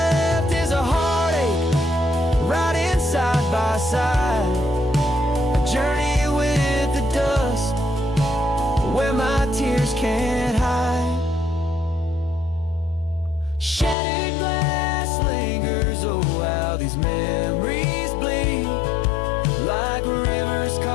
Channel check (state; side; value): drops out; right; at 14.0 s